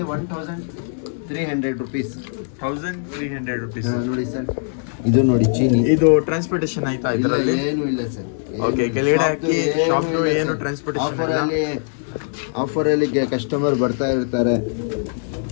1300 ರುಪೀಸ್. 1300 ರುಪೀಸ್. ನೋಡಿ ಸರ್, ಇದು ನೋಡಿ ಚೀನಿ. ಇದು ಟ್ರಾನ್ಸ್ಪೋರ್ಟೇಷನ್ ಆಯ್ತಾ ಇದರಲ್ಲಿ? ಏನು ಇಲ್ಲ ಸರ್. ಓಕೆ, ಕೆಳಗಡೆ ಅಕ್ಕಿ ಶಾಪ್ದು ಏನು ಟ್ರಾನ್ಸ್ಪೋರ್ಟೇಷನ್ ಇಲ್ಲ. ಆಫರಲ್ಲಿ ಕಸ್ಟಮರ್ ಬರ್ತಾ ಇರ್ತಾರೆ,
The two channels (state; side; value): silent; right; digital silence